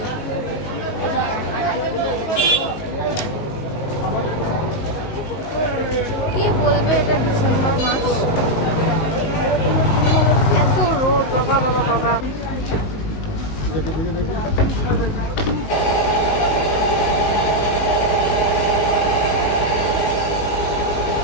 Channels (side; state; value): right; late; 19 ms